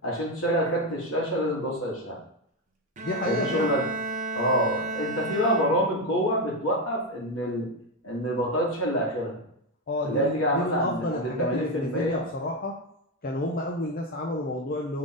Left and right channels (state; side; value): normal; both; correlation 0.10